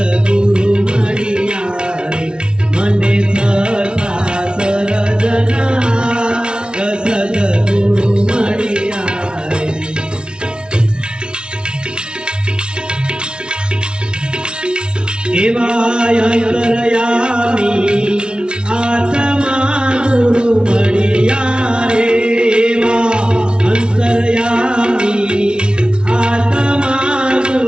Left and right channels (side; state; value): left; late; 0.056 ms